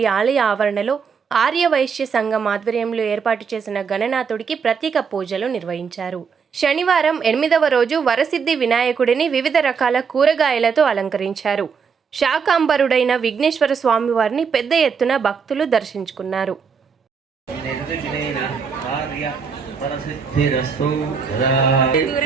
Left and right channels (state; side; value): quieter; left; 6.0 dB